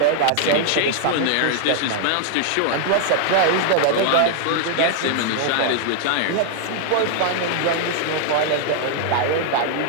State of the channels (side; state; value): both; different; correlation 0.00